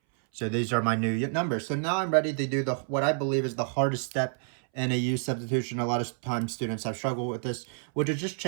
So these are my new numbers. So now I'm ready to do what I believe is the hardest step in a u substitution. A lot of times students have struggled with this, which is just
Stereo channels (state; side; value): silent; left; 59 dB below the other